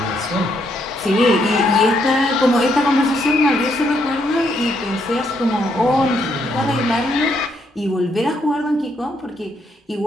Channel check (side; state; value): both; normal; correlation 0.74